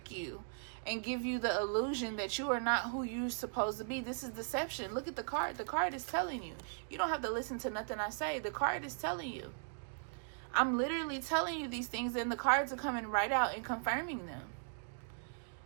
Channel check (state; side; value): silent; left; digital silence